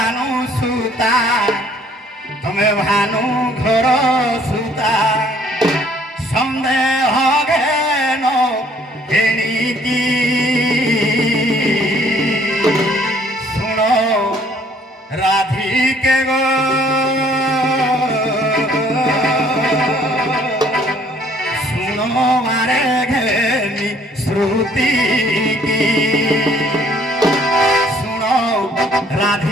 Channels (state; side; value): normal; both; correlation 0.60